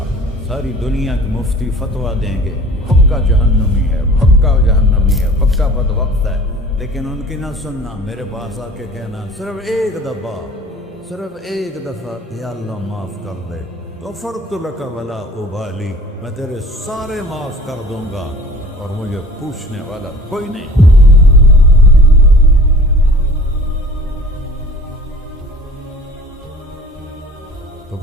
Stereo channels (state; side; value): normal; both; correlation 0.46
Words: ساری دنیا کے مفتی فتویٰ دیں گے پکا جہنمی ہے، پکا جہنمی ہے، پکا بدبخت ہے، لیکن ان کی نہ سننا، میرے پاس آ کے کہنا صرف ایک دفعہ یا اللہ معاف کر دے، غفرت لک ولا ابالی، میں تیرے سارے معاف کر دوں گا اور مجھے پوچھنے والا کوئی نہیں۔ تو